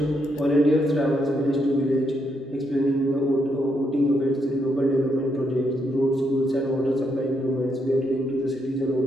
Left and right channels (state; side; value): normal; both; correlation 0.78